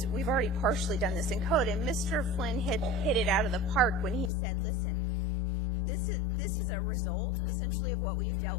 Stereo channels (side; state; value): right; drops out; at 4.3 s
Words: we've already partially done this in code, and Mr. Flynn hit it out of the park when he said, listen, this is a result, essentially, of what we've